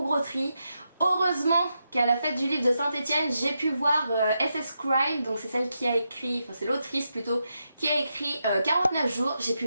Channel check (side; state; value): both; inverted; correlation -0.85